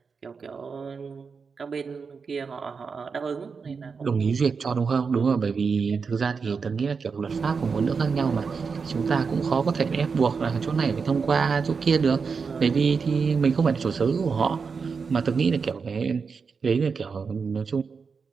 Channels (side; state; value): left; quieter; 5.3 dB